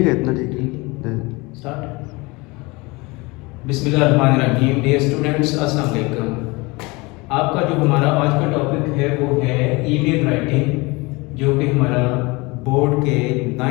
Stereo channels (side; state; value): right; quieter; 24.7 dB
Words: है, इतना ठीक है। स्टार्ट। बिस्मिल्लाहिर्रहमानिर्रहीम। डियर स्टूडेंट्स, अस्सलाम वालेकुम। आपका जो हमारा आज का टॉपिक है वो है ईमेल राइटिंग, जो कि हमारा बोर्ड के